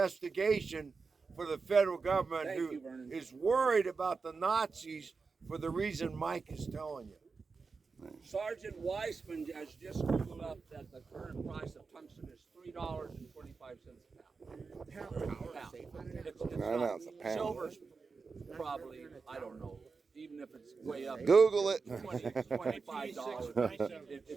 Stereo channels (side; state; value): left; quieter; 4.7 dB